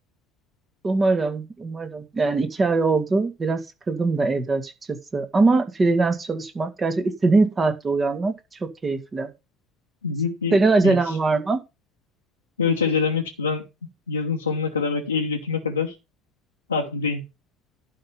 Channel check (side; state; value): both; normal; correlation 0.61